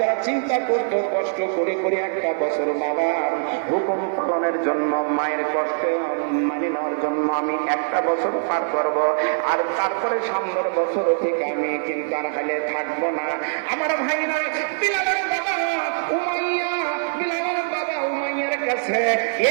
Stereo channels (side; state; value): left; silent; 55 dB below the other